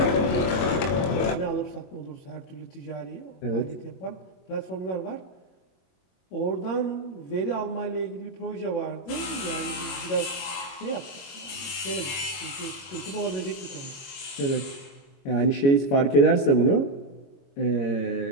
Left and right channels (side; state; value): right; late; 22 ms